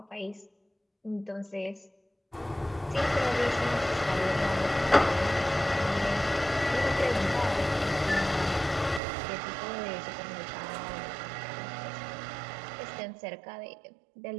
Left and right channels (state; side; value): drops out; left; at 9.0 s